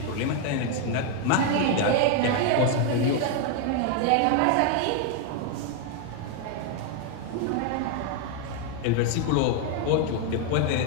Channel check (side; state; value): both; different; correlation 0.01